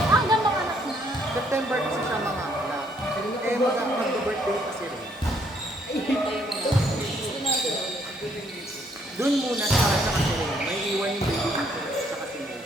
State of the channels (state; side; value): normal; both; correlation 0.68